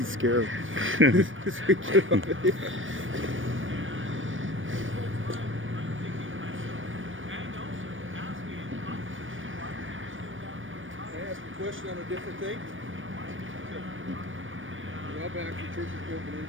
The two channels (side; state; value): left; late; 0.57 ms